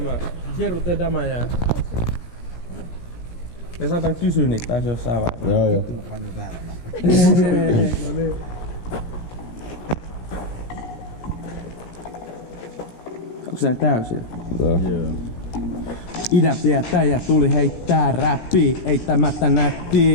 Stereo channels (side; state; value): right; late; 17 ms